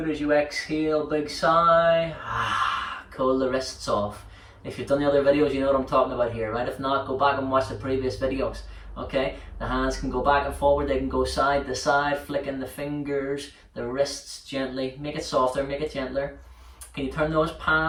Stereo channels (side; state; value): both; identical; correlation 1.00